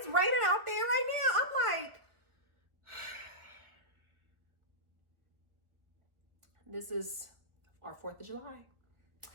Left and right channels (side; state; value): left; late; 1.2 ms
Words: raining out there right now. I'm like, this is our 4th of July.